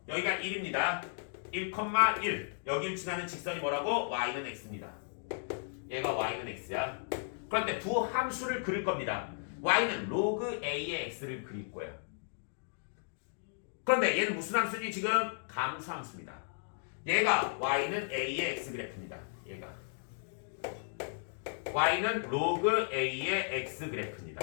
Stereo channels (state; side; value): silent; right; digital silence